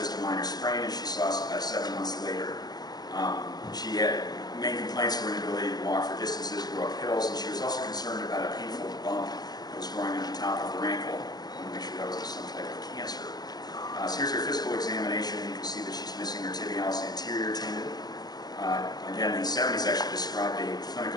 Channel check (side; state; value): right; late; 0.19 ms